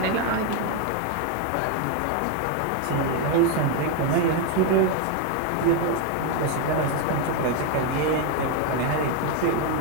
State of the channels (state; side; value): different; both; correlation 0.01